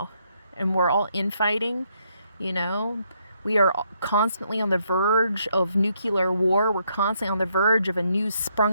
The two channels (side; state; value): both; inverted; correlation -0.74